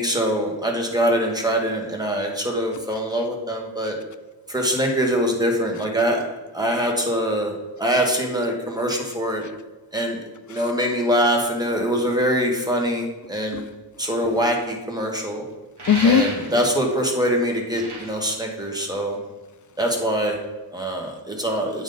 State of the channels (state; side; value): normal; both; correlation 0.28